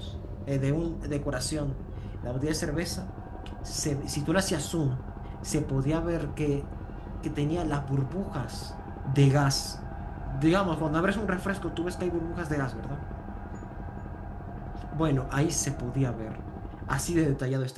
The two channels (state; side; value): identical; both; correlation 1.00